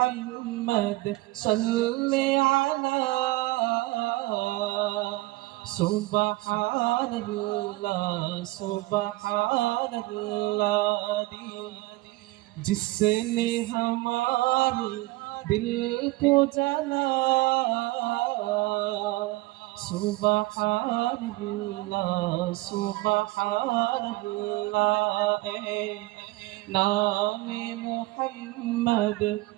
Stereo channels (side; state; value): left; quieter; 20.6 dB